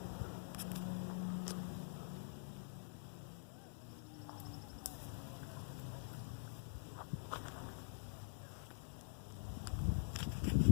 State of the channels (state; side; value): silent; right; digital silence